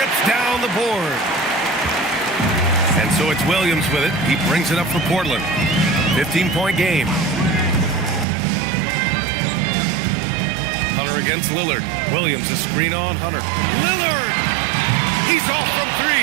down the board. And so it's Williams with it. He brings it up for Portland. 15-point game. Hunter against Lillard. Williams a screen on Hunter. Lillard! He's off from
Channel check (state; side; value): drops out; left; at 8.2 s